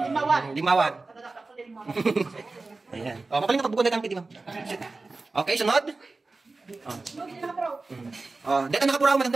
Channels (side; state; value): left; quieter; 3.6 dB